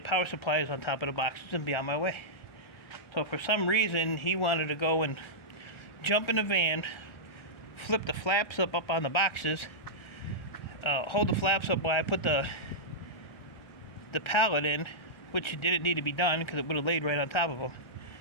supplies on top of the boxes and be on my way. So for some reason, he wanted to go and jump in the van, flip the flaps up on the boxes, hold the flaps up while I put the pallet in, which didn't need to be done because it would have laid right on top of them.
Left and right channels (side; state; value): right; late; 1.3 ms